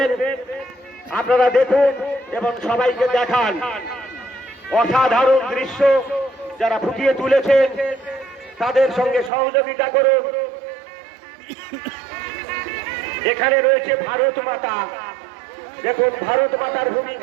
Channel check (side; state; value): left; drops out; at 9.3 s